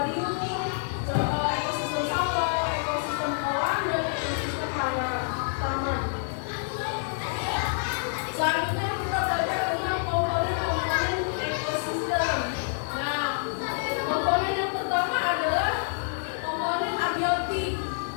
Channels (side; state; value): right; silent; 60 dB below the other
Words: ekosistem sawah, ekosistem kolam, dan ekosistem taman. Selanjutnya kita belajar tentang komponen-komponen ekosistem. Nah, komponen yang pertama adalah komponen abiotik.